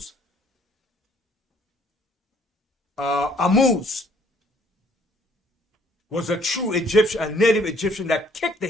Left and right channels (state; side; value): normal; both; correlation 0.62